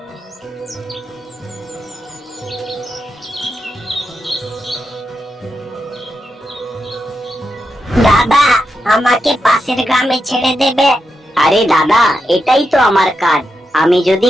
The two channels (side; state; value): both; normal; correlation 0.86